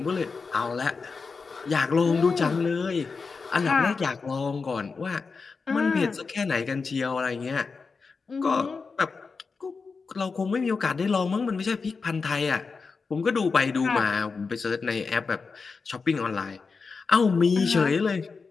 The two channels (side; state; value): right; quieter; 4.7 dB